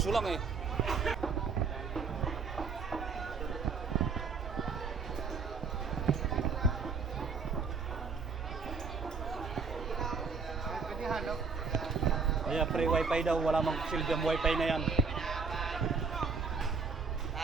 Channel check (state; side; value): quieter; left; 5.0 dB